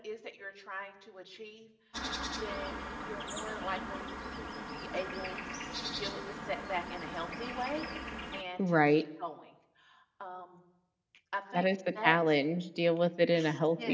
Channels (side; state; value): both; identical; correlation 1.00